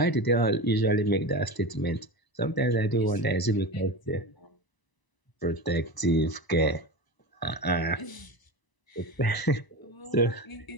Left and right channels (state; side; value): late; right; 1.0 ms